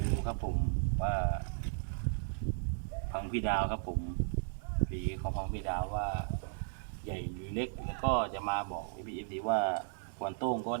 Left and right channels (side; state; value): left; silent; digital silence